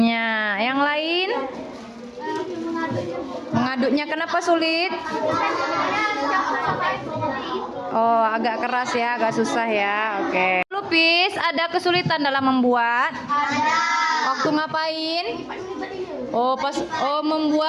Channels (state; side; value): identical; both; correlation 1.00